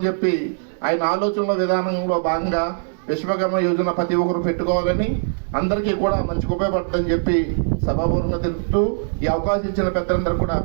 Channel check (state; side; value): silent; left; digital silence